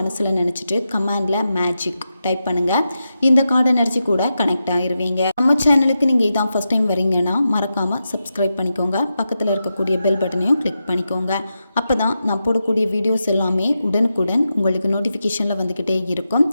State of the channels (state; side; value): inverted; both; correlation -0.88